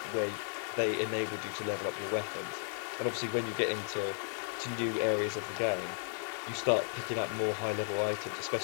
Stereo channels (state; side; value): silent; right; 55 dB below the other